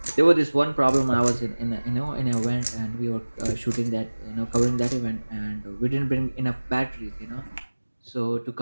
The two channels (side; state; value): both; inverted; correlation -1.00